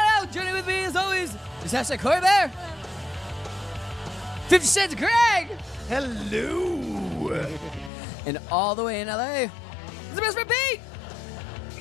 Joining with me as always is hashtag Cori Bear. 50 Cents Craig. Hello. And all the way in LA is the best friend Pete.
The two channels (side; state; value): right; drops out; at 7.9 s